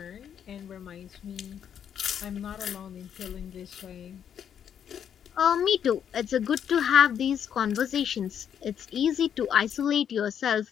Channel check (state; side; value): quieter; right; 8.7 dB